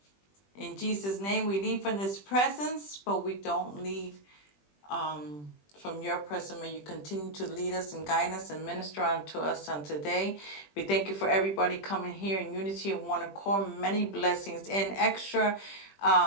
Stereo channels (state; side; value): late; right; 20 ms